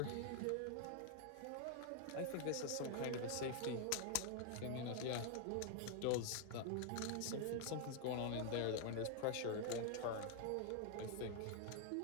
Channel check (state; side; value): different; both; correlation 0.00